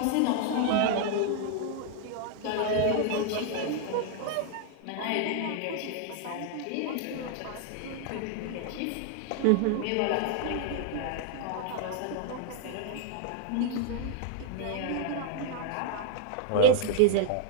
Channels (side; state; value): both; different; correlation 0.00